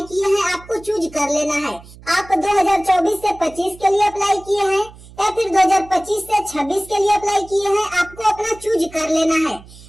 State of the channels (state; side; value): noise; right; hum, 21 dB below the sound